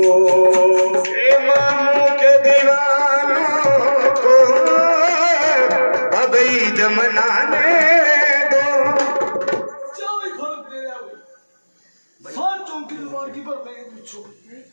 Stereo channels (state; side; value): inverted; both; correlation -1.00